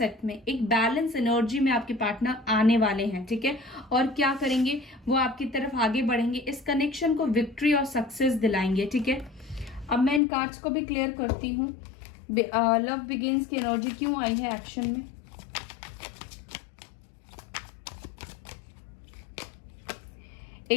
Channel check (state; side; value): drops out; right; at 10.2 s